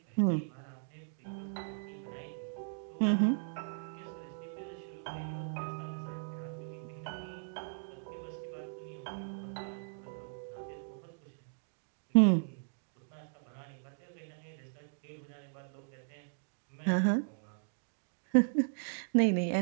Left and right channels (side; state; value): left; silent; digital silence